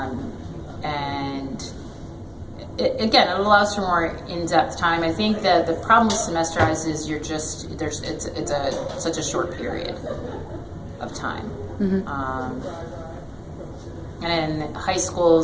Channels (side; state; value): both; identical; correlation 1.00